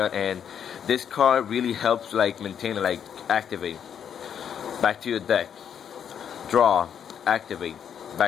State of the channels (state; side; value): quieter; right; 8.4 dB